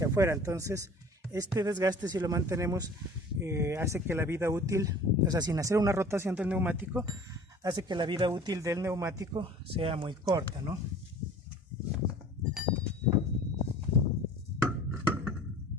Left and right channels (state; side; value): normal; both; correlation 0.46